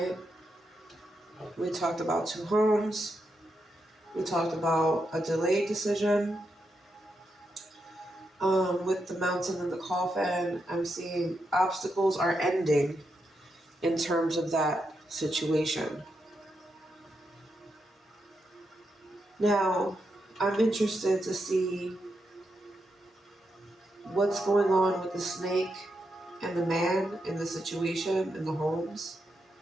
We talked about 2 homes. We talked about a delayed decision. With the mountain and the coffin, I'm seeing obstacles are ending in terms of that situation. Now, I'm interested to see what's going on with the snake and the man in the situation in the homes,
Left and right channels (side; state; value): both; normal; correlation 0.84